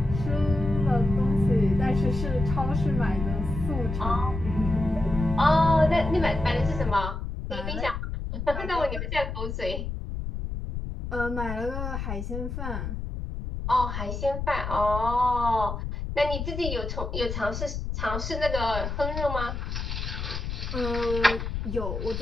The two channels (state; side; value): noise; left; rumble, 5 dB below the sound